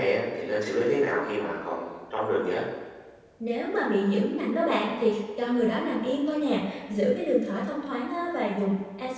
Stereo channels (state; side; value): identical; both; correlation 1.00